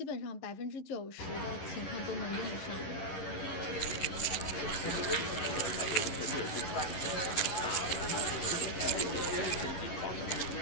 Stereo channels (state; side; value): late; right; 10 ms